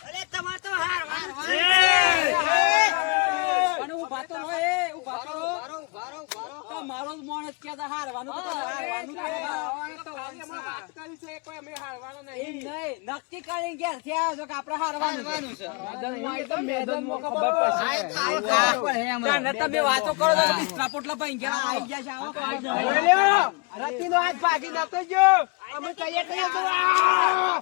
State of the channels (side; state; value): right; quieter; 29.9 dB